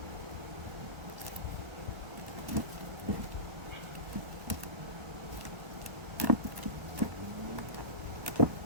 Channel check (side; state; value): left; late; 1.3 ms